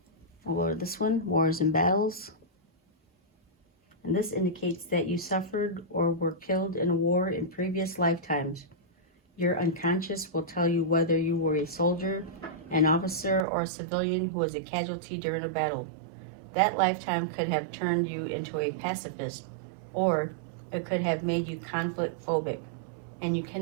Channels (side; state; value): left; drops out; at 13.5 s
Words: I'll go to this one, Wars and Battles. and this indicates that you suffered or were killed in a war in previous lifetimes. Your unconscious will tell you whether you were a soldier, an officer, or a civilian who was a casualty during a battle. That lifetime could have turned you into a pacifist, or it could have made you conflict phobic, and you